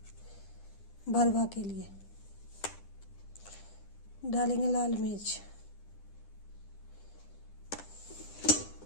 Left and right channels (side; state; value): right; late; 10 ms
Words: भरवा के लिए, डालेंगे लाल मिर्च,